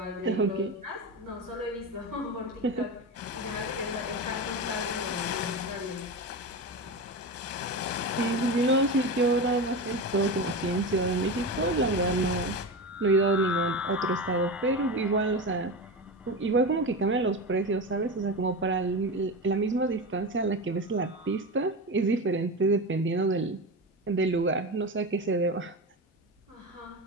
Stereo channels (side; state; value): both; normal; correlation 0.22